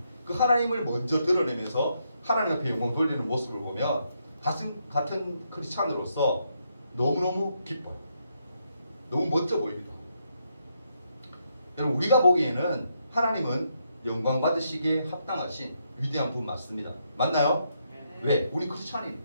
그 하나님을 먼저 드러내면서 하나님 앞에 영광 돌리는 모습을 보면 같은 크리스찬으로서 너무너무 기뻐요. 너무 멋져 보입니다. 여러분 우리가 보기에는 하나님은 영광 받으시기에 합당하신 위대한 분 맞습니다. 맞나요? 왜? 우리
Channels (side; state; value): both; inverted; correlation -0.78